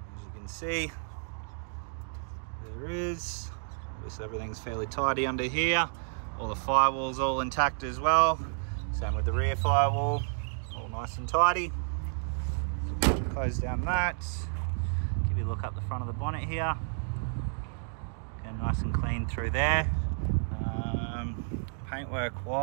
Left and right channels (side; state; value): left; silent; digital silence